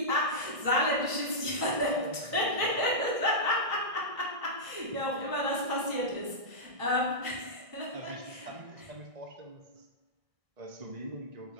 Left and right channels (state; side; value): late; left; 1.6 ms